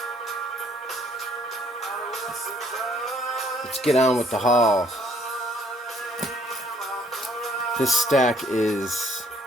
Let's get on with the haul. This stack is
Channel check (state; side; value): normal; both; correlation 0.64